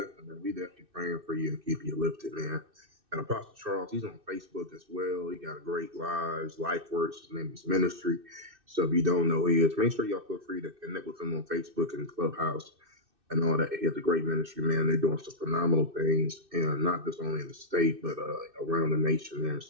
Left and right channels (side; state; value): left; late; 2.6 ms